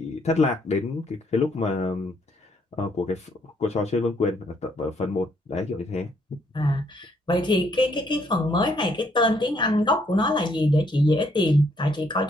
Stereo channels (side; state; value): both; normal; correlation 0.69